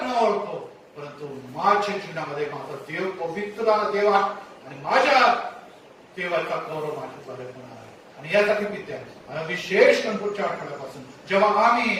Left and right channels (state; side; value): identical; both; correlation 1.00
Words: न ओळखो, परंतु माझ्या जीवनामध्ये माझा देव पवित्र देवा आणि माझ्या देवाचा गौरव माझ्याद्वारे होणार आहे. आणि यासाठी विद्या विशेष पुढच्या आठवड्यापासून जेव्हा